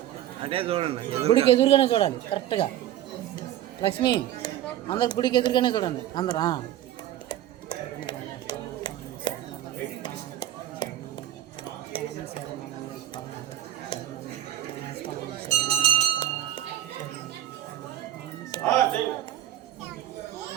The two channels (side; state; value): left; quieter; 12.6 dB